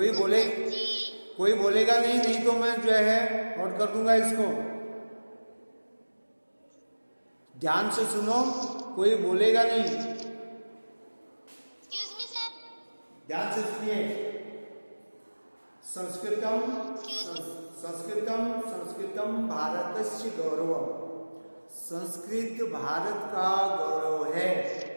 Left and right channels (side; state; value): both; inverted; correlation -1.00